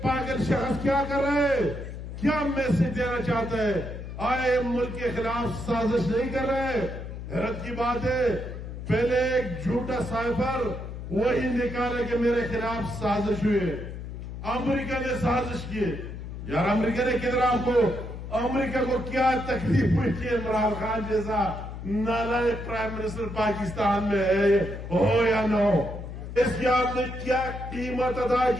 پاگل شخص کیا کر رہے ہے، کیا میسج دینا چاہتا ہے؟ آئے ملک کے خلاف سازش نہیں کر رہے؟ حیرت کی بات ہے، پہلے ایک جھوٹا سائفر وہی نکالا کہ میرے خلاف سازش ہوئی، امریکہ نے سازش کی۔ یار امریکہ نے کدھر آپ کو، امریکہ کو کیا تکلیف ہوئی کہ عمران خان جیسا نالائق پرائم منسٹر پاکستان میں ہے، ہو یا نہ ہو؟ اس کی آپ نے کیا قیمت ادا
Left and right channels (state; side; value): noise; left; hum, 9 dB below the sound